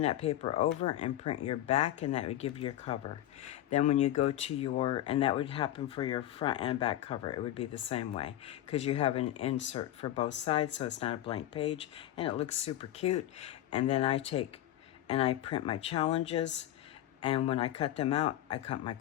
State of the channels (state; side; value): quieter; right; 13.1 dB